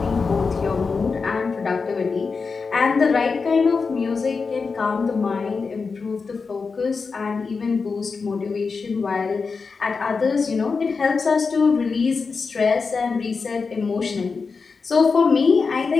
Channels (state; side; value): quieter; right; 4.8 dB